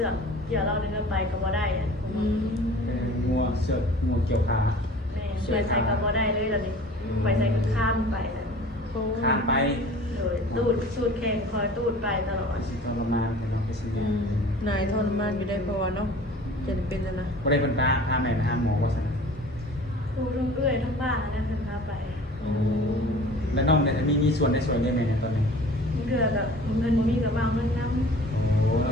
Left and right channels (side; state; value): both; normal; correlation 0.45